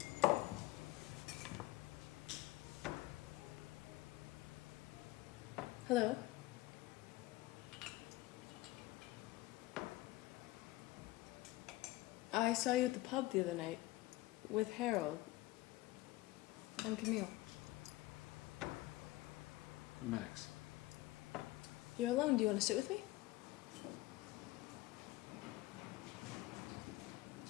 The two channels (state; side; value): quieter; right; 18.5 dB